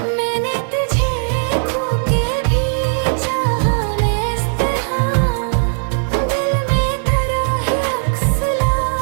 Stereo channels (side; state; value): left; silent; digital silence